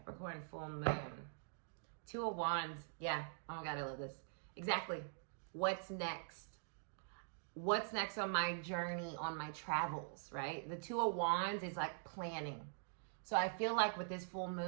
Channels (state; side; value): silent; left; digital silence